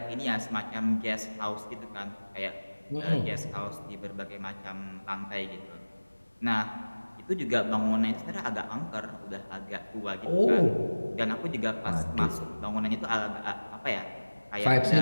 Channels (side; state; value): both; inverted; correlation -1.00